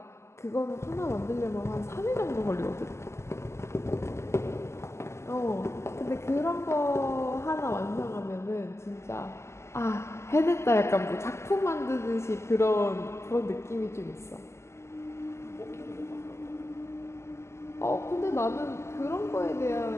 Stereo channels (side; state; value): right; late; 0.13 ms